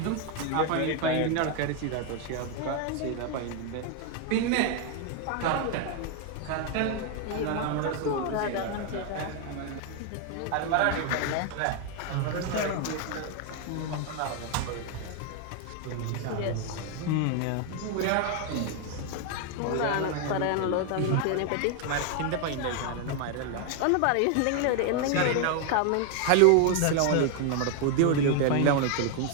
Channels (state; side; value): different; both; correlation 0.01